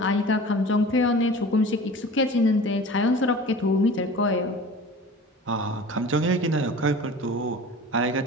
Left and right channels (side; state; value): both; normal; correlation 0.39